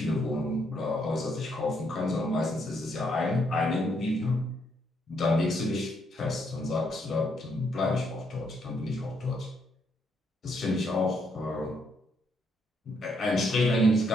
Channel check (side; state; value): both; normal; correlation 0.74